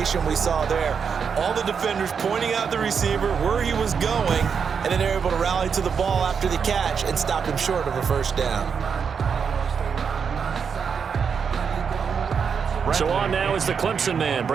we saw there. All the defenders pointing out the receiver where he was going, and then they're able to rally to the ball after the catch and stop him short of a 1st down. So on now is the Clemson man,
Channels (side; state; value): left; quieter; 6.4 dB